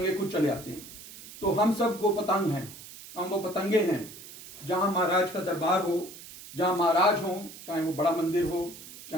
खुद चले आते हैं। तो हम सब वो पतंग हैं, हम वो पतंगे हैं। जहाँ महाराज का दरबार हो, जहाँ महाराज हो, चाहे वो बड़ा मंदिर हो,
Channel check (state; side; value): noise; right; hiss, 16 dB below the sound